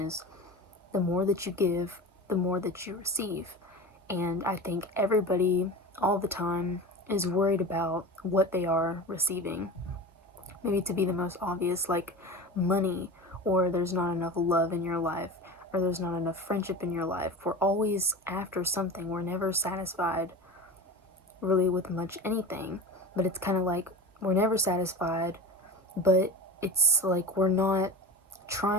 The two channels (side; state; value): both; normal; correlation 0.31